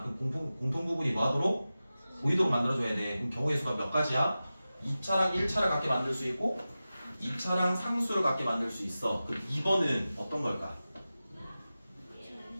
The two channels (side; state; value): both; inverted; correlation -0.95